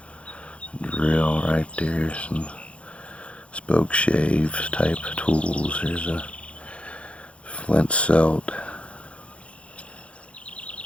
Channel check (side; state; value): right; late; 0.061 ms